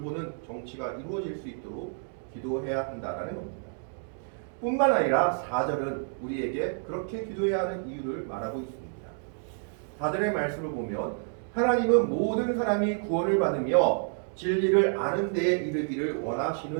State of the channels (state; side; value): silent; left; 58 dB below the other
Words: 정치가 이루어질 수 있도록 기도해야 한다라는 겁니다. 뿐만 아니라 4절은 우리에게 그렇게 기도해야 하는 이유를 말하고 있습니다. 4절의 말씀을 보면 하나님은 모든 사람이 구원을 받으며 진리를 아는 데에 이르기를